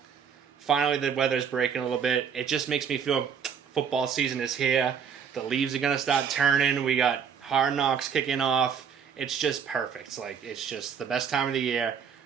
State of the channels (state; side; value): quieter; left; 7.1 dB